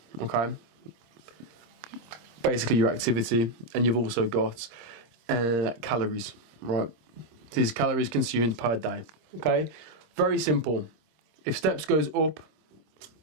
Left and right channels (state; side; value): late; left; 26 ms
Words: okay? Basically your activity, and you've also got calories, right? These calories consumed per day, okay? Very simple. If steps goes up,